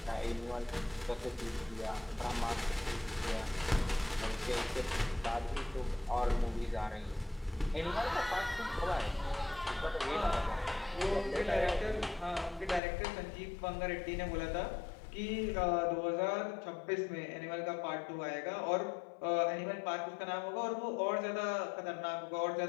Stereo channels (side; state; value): right; drops out; at 12.8 s